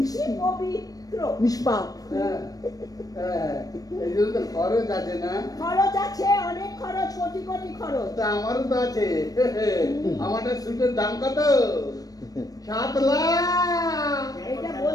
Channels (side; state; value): right; late; 0.18 ms